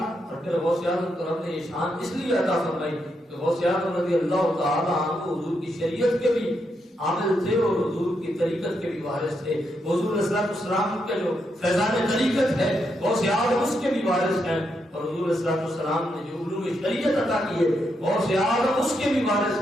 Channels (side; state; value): both; normal; correlation 0.81